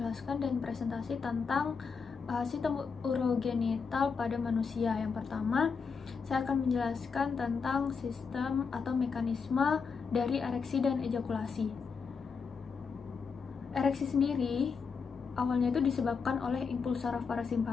dan presentasi tentang sistem urogenital pada manusia. Yang pertama, saya akan menjelaskan tentang sistem atau mekanisme dari ereksi dan ejakulasi. Ereksi sendiri awalnya itu disebabkan oleh impuls saraf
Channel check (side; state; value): right; quieter; 5.5 dB